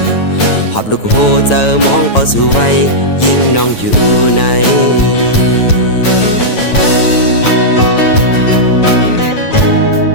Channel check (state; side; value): late; right; 9.1 ms